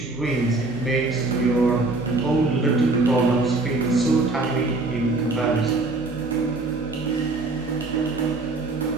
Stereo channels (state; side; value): quieter; left; 3.3 dB